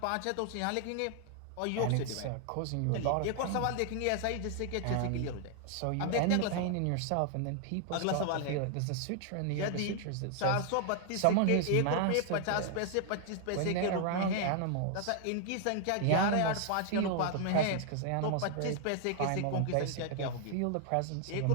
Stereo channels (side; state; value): both; different; correlation 0.00